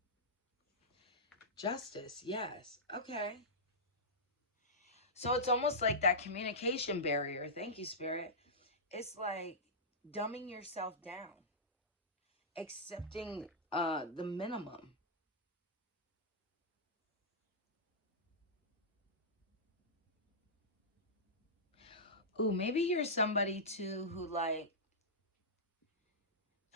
Justice, yes. Okay. So it's almost like that communication barrier. Thank you, Spirit. It's like dumbing yourself down. Accepting the minimum. Ooh, maybe you're somebody too who like,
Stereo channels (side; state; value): both; normal; correlation -0.13